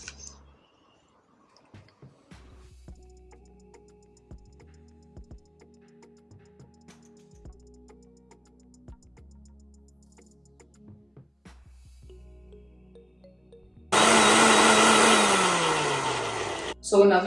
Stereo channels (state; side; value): identical; both; correlation 1.00